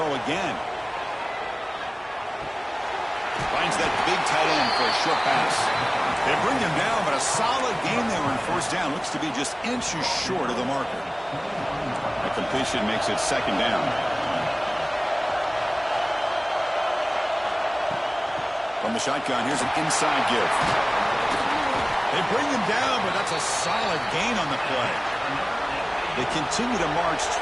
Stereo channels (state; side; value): identical; both; correlation 1.00